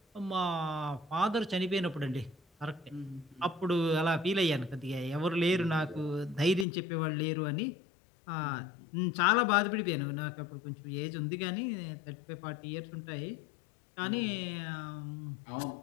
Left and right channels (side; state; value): right; drops out; at 6.7 s